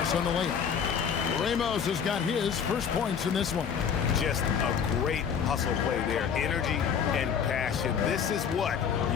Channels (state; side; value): quieter; right; 7.3 dB